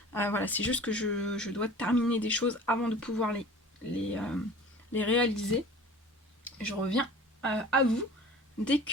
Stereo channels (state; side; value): normal; both; correlation 0.43